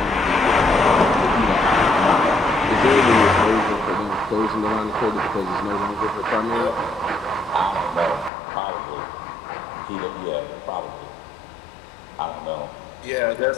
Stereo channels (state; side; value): drops out; right; at 8.3 s